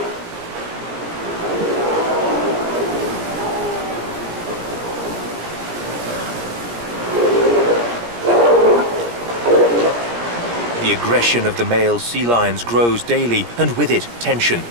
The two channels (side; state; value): left; late; 17 ms